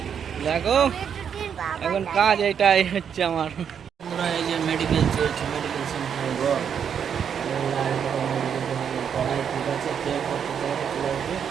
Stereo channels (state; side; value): quieter; left; 7.8 dB